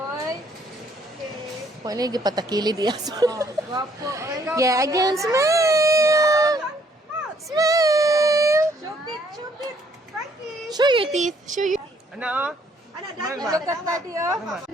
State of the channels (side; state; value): both; normal; correlation 0.65